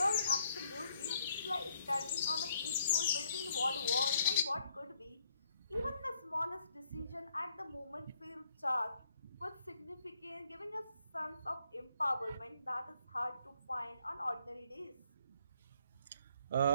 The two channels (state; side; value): inverted; both; correlation -0.69